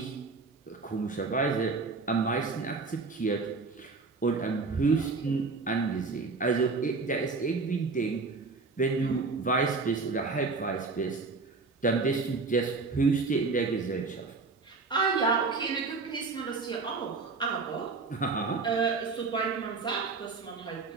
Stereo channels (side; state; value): left; quieter; 4.1 dB